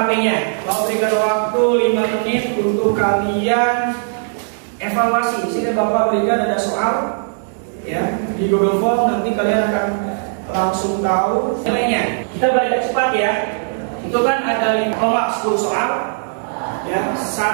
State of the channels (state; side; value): silent; left; digital silence